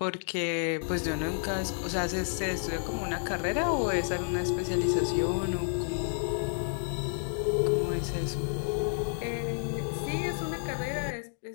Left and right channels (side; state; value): right; silent; digital silence